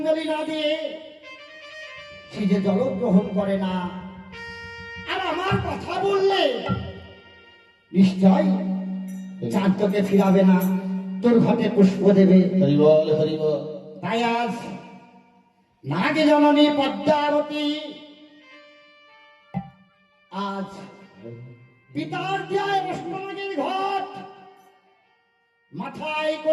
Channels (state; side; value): identical; both; correlation 1.00